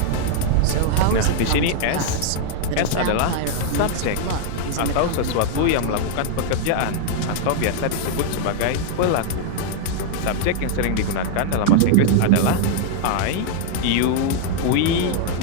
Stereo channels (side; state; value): both; different; correlation 0.00